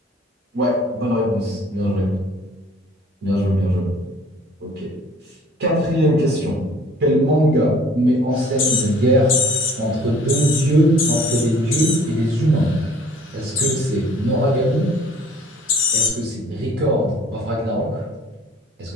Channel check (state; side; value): normal; both; correlation 0.54